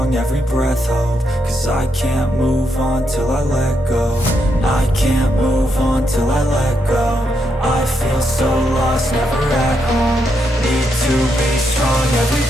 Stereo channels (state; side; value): normal; both; correlation 0.80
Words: every breath hold. Cause I can't move on till I let go. I can't move on till I let go. I feel so lost, never at home. Need to be strong, every